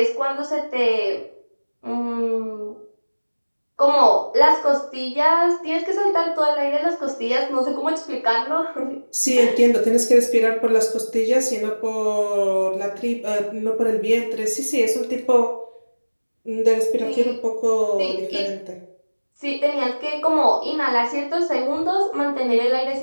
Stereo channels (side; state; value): both; inverted; correlation -1.00